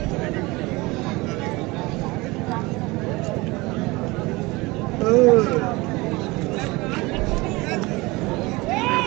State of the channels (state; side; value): quieter; left; 22.9 dB